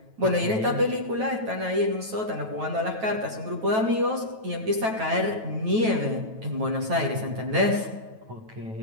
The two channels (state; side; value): late; left; 9.2 ms